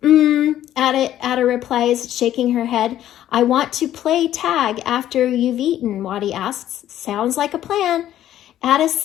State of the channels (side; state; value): right; quieter; 12.2 dB